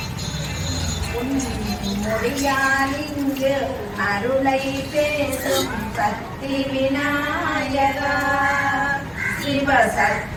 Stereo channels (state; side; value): identical; both; correlation 1.00